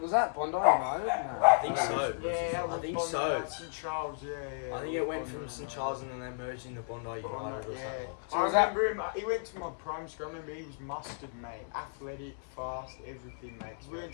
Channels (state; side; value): silent; right; digital silence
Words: Bondi United? No. I think so. Yeah, that was I think Bondi, so. St Charles, yeah. I think it went from St Charles and then they merged into Bondi United or something. So I was that- remember him. He went to my primary school. I remember he was mustard, mate. Athletic, fast, everything, mate. 'Cause we went